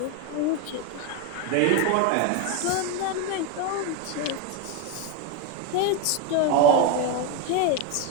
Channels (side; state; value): both; different; correlation 0.02